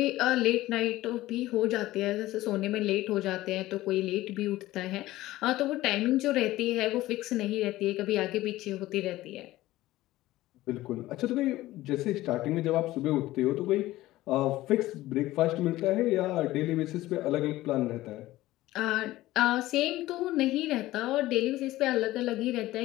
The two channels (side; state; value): right; quieter; 16.7 dB